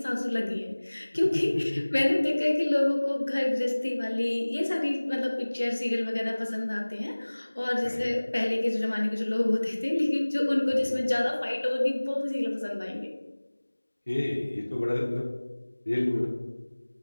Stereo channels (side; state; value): both; inverted; correlation -1.00